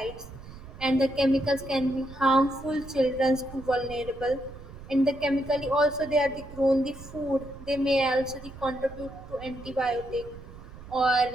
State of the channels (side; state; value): right; noise; rumble, 15 dB below the sound